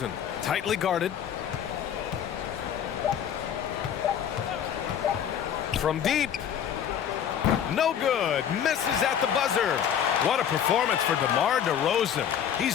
Tightly guarded. From deep. No good. Misses at the buzzer. What a performance for DeMar DeRozan.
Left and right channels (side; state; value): right; quieter; 9.0 dB